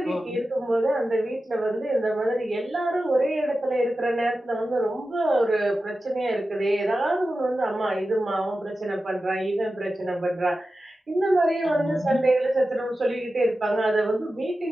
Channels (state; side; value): normal; both; correlation 0.93